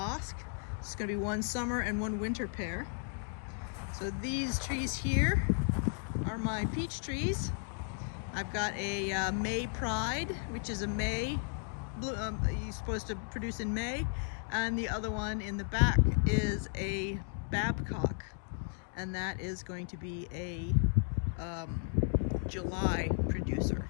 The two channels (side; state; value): right; silent; 55 dB below the other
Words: It's going to be 1 summer and 1 winter pear. So these trees here are my peach trees. I've got a May Pride, which is a May, you're supposed to produce in May, and the other one in the back is a Babcock, and that is going to be a July producer.